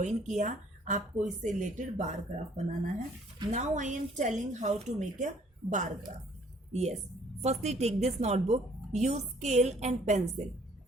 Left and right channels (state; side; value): normal; both; correlation 0.60